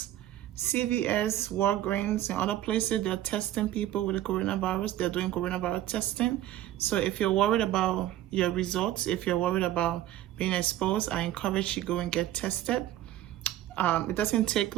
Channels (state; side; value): quieter; left; 13.5 dB